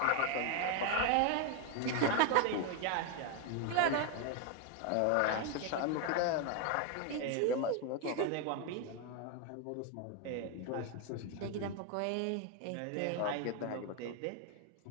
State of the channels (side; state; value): both; different; correlation 0.01